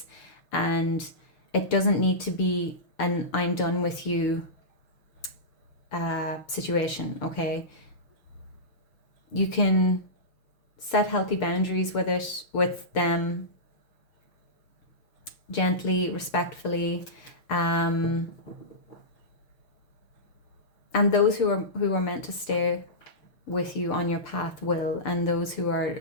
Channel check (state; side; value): late; right; 6.7 ms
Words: and it doesn't need to be an I'm done with you situation, okay? You can set healthy boundaries with them, gently, respectfully, and those who are meant to stay with you on your path will, and those who